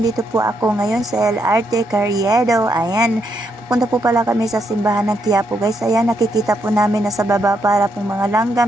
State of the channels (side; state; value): both; normal; correlation 0.78